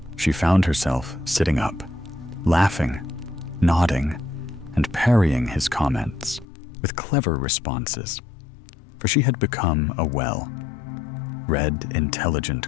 she found herself sitting up, laughing, nodding, and parrying his comments with clever responses, for she had become a well-read, intelligent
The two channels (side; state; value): right; drops out; at 6.5 s